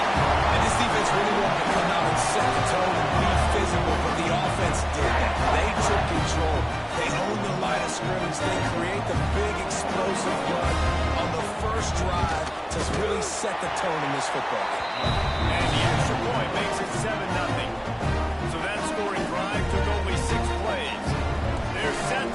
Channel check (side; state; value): both; identical; correlation 1.00